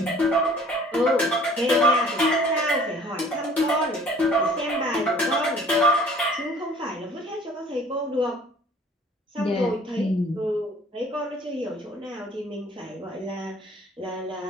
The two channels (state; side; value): normal; both; correlation 0.52